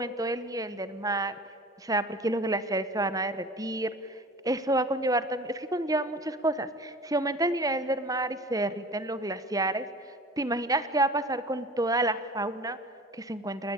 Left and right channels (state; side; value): normal; both; correlation 0.40